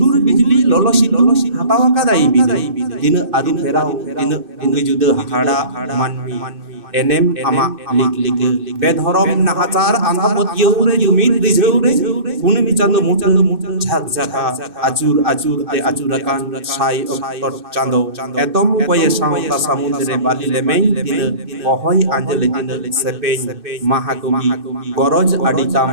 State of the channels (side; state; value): left; late; 2.6 ms